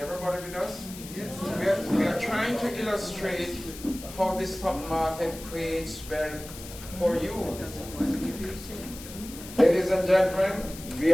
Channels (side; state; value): left; noise; hiss, 14 dB below the sound